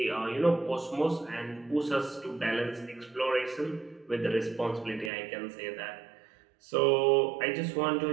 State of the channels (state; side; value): drops out; left; at 5.1 s